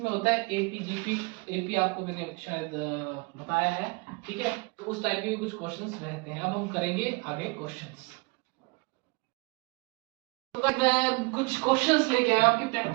होता है एपी जीपी। एपी आपको मैंने शायद बताया है, ठीक है। तो उस टाइप के भी कुछ क्वेश्चंस रहते हैं। अब हम करेंगे आगे क्वेश्चंस। तो गाइस मैं कुछ क्वेश्चंस लेके आया आपकी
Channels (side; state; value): left; quieter; 28.3 dB